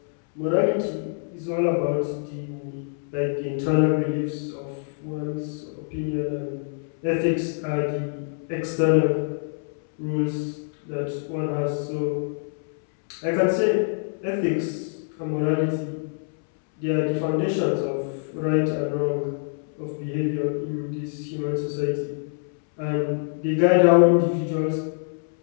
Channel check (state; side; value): silent; right; 62 dB below the other